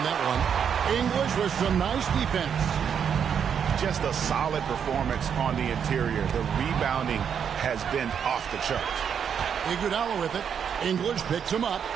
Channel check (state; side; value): quieter; left; 7.7 dB